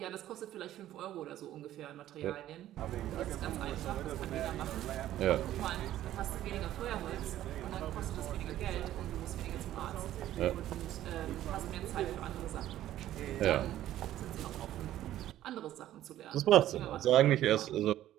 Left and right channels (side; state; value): left; quieter; 13.1 dB